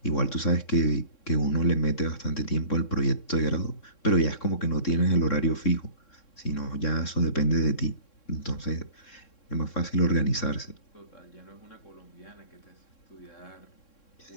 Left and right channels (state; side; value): late; right; 3.6 ms